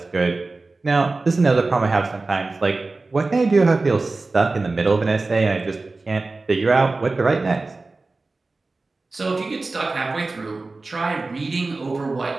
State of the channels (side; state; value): left; quieter; 3.5 dB